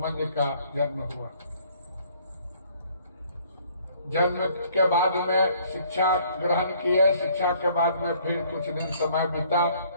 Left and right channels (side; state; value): both; inverted; correlation -0.60